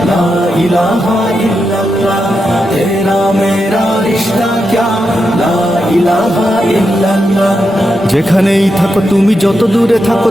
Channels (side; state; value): both; normal; correlation 0.86